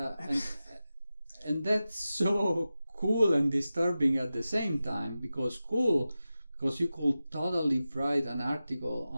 so cool and disturbing at the same time, because you could totally write an article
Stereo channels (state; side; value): inverted; both; correlation -0.94